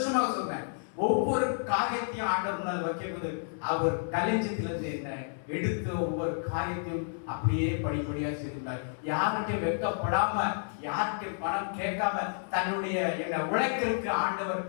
சொல்றேன். ஒவ்வொரு காரியத்தையும் ஆண்டவர் முன்னால் வைக்கும்போது அவர் கலைஞத்திலிருந்து என்ன எடுத்து ஒவ்வொரு காரியத்தையும் அப்படியே படிப்படியா செய்தார். யார்கிட்டையும் வெட்கப்படாம, யார்கிட்டையும் பணம் கேட்காம தன்னுடைய என்ன உழைக்கிறதுக்கு ஆண்டவர்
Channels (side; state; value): right; silent; digital silence